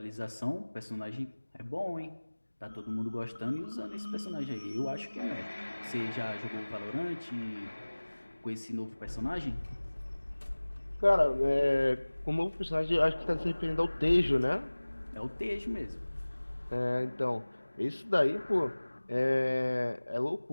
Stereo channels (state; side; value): inverted; both; correlation -1.00